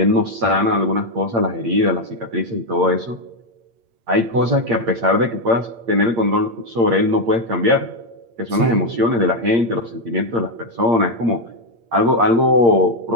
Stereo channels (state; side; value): late; left; 8.7 ms